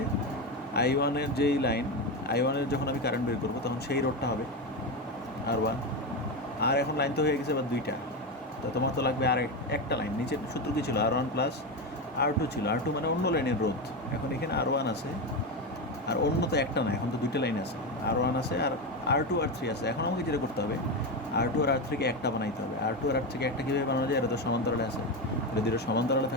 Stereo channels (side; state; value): both; normal; correlation 0.15